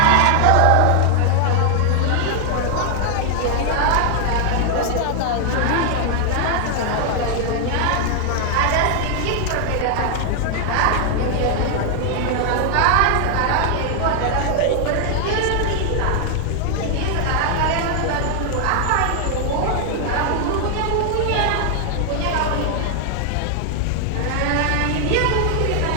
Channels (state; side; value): different; both; correlation 0.00